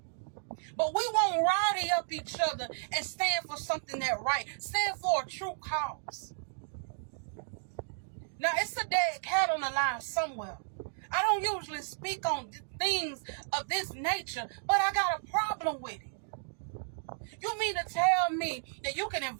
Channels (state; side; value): silent; left; digital silence